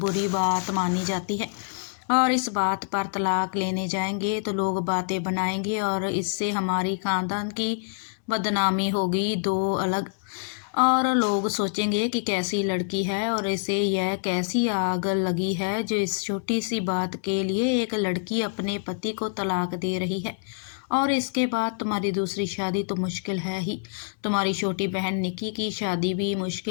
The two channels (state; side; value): silent; right; digital silence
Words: बात मानी जाती है। और इस बात पर तलाक लेने जाएंगे तो लोग बातें बनाएंगे और इससे हमारी खानदान की बदनामी होगी। दो अलग और लोग सोचेंगे कि कैसी लड़की है और इसे यह कैसी आग लगी है जो इस छोटी सी बात के लिए एक लड़की अपने पति को तलाक दे रही है। और इसके बाद तुम्हारी दूसरी शादी तो मुश्किल है ही, तुम्हारी छोटी बहन निकी की शादी भी